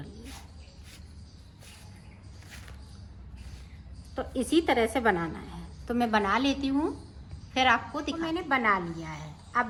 लिया। तो इसी तरह से बनाना है। तो मैं बना लेती हूँ, फिर आपको दिखा। तो मैंने बना लिया है। अब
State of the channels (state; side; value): identical; both; correlation 1.00